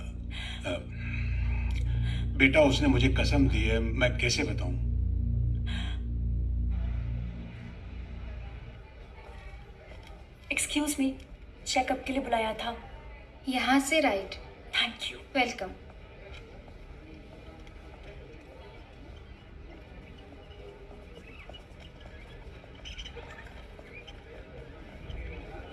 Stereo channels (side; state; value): both; identical; correlation 1.00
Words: बेटा उसने मुझे कसम दी है, मैं कैसे बताऊं? एक्सक्यूज मी, चेकअप के लिए बुलाया था। यहाँ से right. Thank you. Welcome.